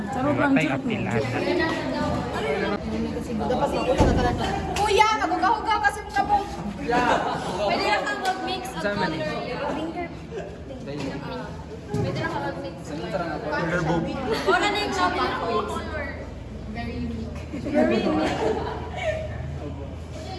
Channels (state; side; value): identical; both; correlation 1.00